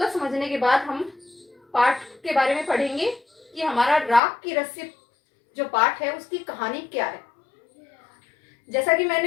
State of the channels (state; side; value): drops out; right; at 4.2 s